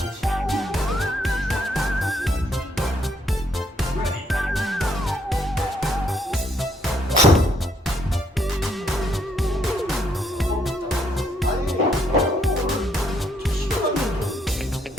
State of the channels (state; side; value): normal; both; correlation 0.71